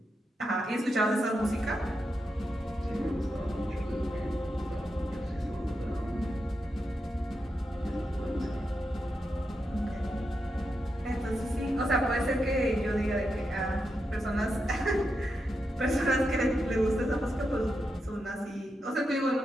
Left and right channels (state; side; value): normal; both; correlation 0.86